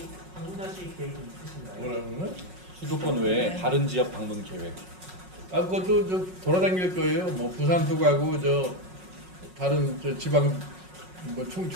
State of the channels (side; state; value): left; late; 5.5 ms